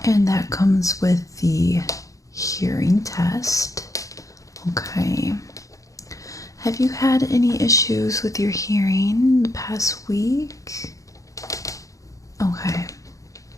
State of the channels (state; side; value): late; right; 0.16 ms